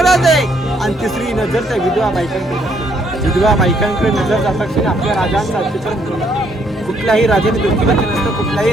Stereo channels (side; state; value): both; normal; correlation 0.70